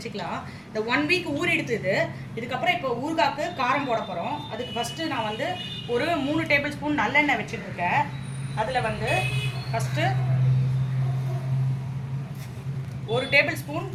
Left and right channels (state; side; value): identical; both; correlation 1.00